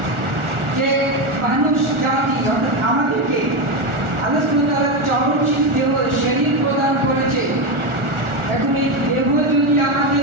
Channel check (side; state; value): left; late; 1.4 ms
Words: যে মানুষ জাতি অর্থাৎ আমাদেরকে আল্লাহ সুবহানাহু ওয়া তাআলা চরমশীল দেহ শরীর প্রদান করেছে। এখন এই দেহ যদি